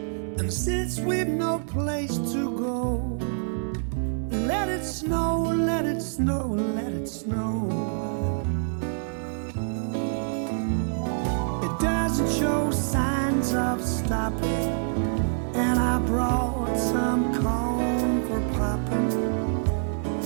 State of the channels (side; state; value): left; silent; 61 dB below the other